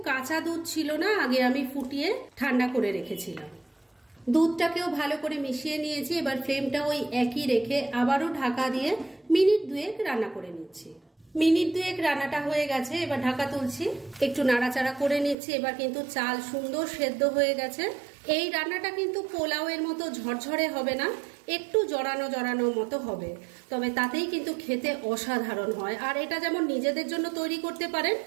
কাঁচা দুধ ছিল না, আগে আমি ফুটিয়ে ঠান্ডা করে রেখেছিলাম। দুধটাকেও ভালো করে মিশিয়ে নিয়েছি। এবার ফ্লেমটা ওই একই রেখে আবারও ঢাকা দিয়ে মিনিট 2 রান্না করে নিচ্ছি। মিনিট 2 রান্নাটা হয়ে গেছে। এবার ঢাকা তুলছি, একটু নাড়াচাড়া করে নিচ্ছি। এবার কিন্তু চাল সুন্দর সেদ্ধ হয়ে গেছে। এই রান্নাটা কিন্তু পোলাওয়ের মতো ঝরঝরে হবে না, একটু জড়ানো জড়ানো মতো হবে, তবে তাতেই কিন্তু খেতে অসাধারণ হয়। আর এটা যেমন নিজেদের জন্য তৈরি করতে পারেন,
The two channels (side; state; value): left; drops out; at 15.4 s